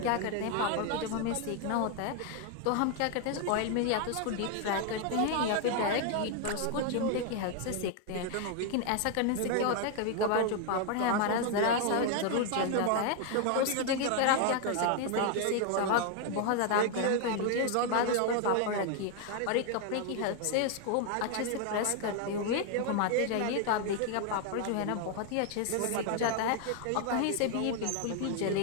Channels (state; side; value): different; both; correlation 0.00